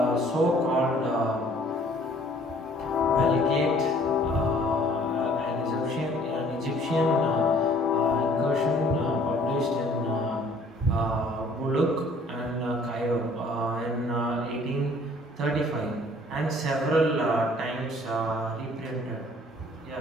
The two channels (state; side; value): normal; both; correlation 0.56